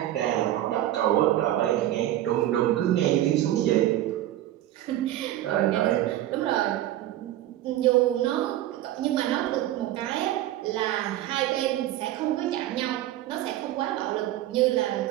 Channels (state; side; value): quieter; left; 13.7 dB